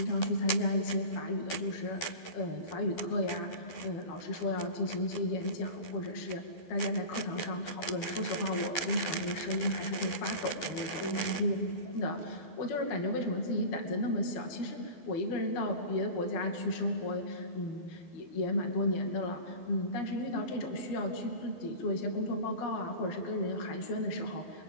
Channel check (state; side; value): late; right; 12 ms